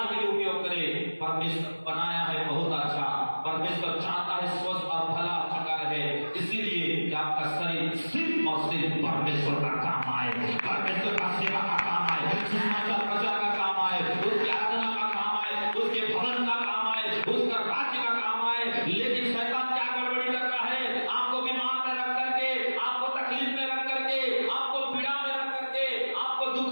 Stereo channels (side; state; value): both; inverted; correlation -1.00